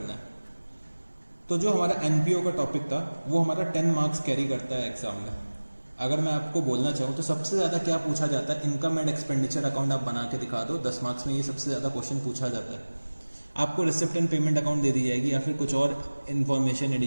है। तो जो हमारा एनपीओ का टॉपिक था वो हमारा 10 मार्क्स कैरी करता है एग्जाम में। अगर मैं आपको बोलना चाहूँ तो सबसे ज़्यादा क्या पूछा जाता है, इनकम एंड एक्सपेंडिचर अकाउंट आप बना के दिखा दो, 10 मार्क्स में ये सबसे ज़्यादा क्वेश्चन पूछा जाता है। आपको रिसिप्ट एंड पेमेंट अकाउंट दे दी जाएगी या फिर कुछ और इन्फॉर्मेशन,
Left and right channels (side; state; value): both; inverted; correlation -1.00